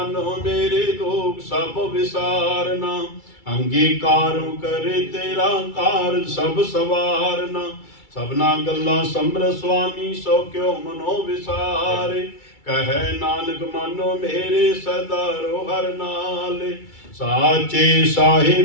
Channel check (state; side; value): late; right; 2.3 ms